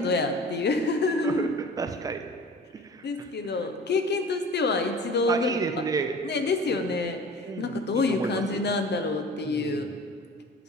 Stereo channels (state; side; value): normal; both; correlation 0.42